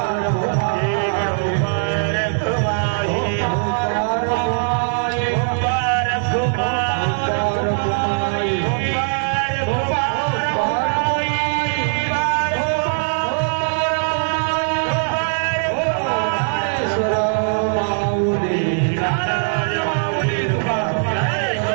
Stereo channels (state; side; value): silent; left; digital silence